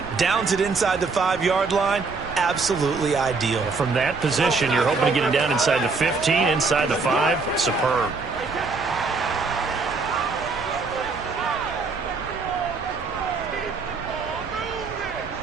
Downs it inside the 5-yard line. Absolutely ideal. From that position, you're hoping to get it down inside the 15, inside the 5. Superb.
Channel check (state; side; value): quieter; left; 4.4 dB